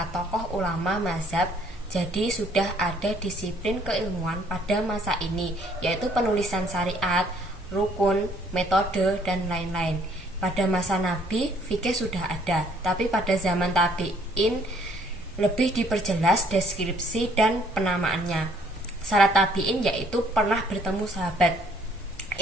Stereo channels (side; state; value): both; normal; correlation 0.63